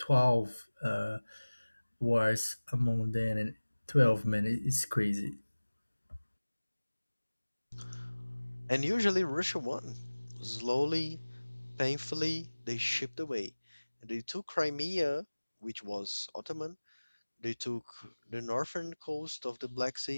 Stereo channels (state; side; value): inverted; both; correlation -1.00